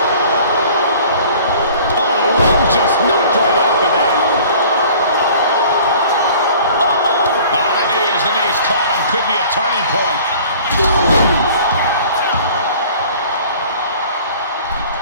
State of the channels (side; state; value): both; inverted; correlation -0.48